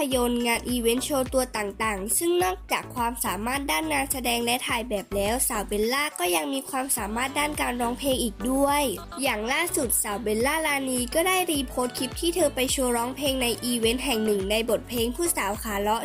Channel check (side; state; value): both; identical; correlation 1.00